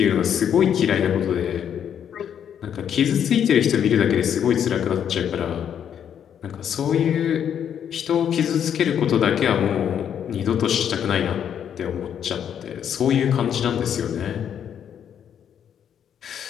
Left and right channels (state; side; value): quieter; right; 8.8 dB